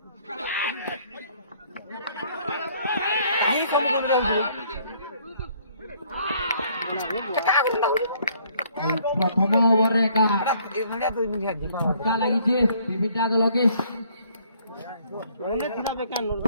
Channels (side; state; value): both; inverted; correlation -0.62